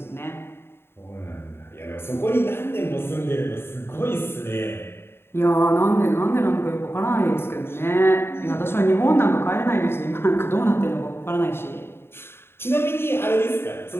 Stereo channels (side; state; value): right; late; 0.11 ms